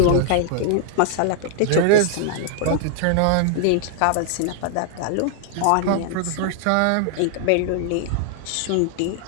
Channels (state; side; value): different; both; correlation 0.00